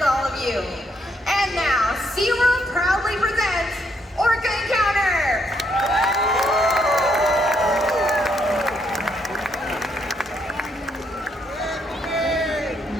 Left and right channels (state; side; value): normal; both; correlation 0.74